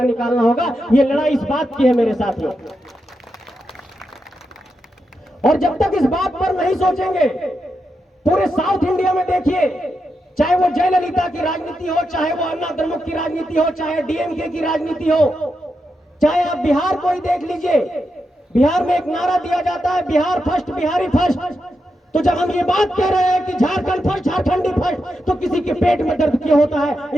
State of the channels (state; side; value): normal; both; correlation 0.86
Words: निकालना होगा। ये लड़ाई इस बात की है मेरे साथियों। और जब तक इस बात पर नहीं सोचेंगे, पूरे साउथ इंडिया में देखिए, चाहे वो जयललिता की राजनीति हो, चाहे वो अन्ना द्रमुक की राजनीति हो, चाहे डीएमके की राजनीति हो, चाहे आप बिहार को ही देख लीजिए, बिहार में एक नारा दिया जाता है, बिहार फर्स्ट, बिहारी फर्स्ट। तो जब हम ये बात कह रहे हैं कि झारखंड फर्स्ट, झारखंडी फर्स्ट, तो किसी के पेट में दर्द क्यों होता है,